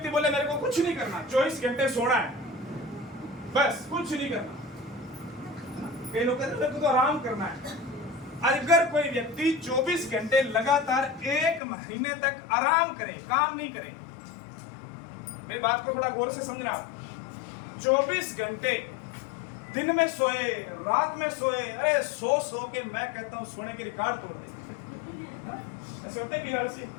बोले मेरे को कुछ नहीं करना, 24 घंटे सोना है, बस कुछ नहीं करना। कई लोग कहते हैं मेरे को तो आराम करना है। अगर कोई व्यक्ति 24 घंटे लगातार 1 महीने तक आराम करे, काम नहीं करे, मेरी बात को थोड़ा गौर से समझना। 24 घंटे दिन में सोए, रात में सोए, अरे सो के मैं कहता हूं सोने के रिकॉर्ड तोड़ दे। ऐसे होता है कि हर सी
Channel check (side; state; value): right; drops out; at 11.6 s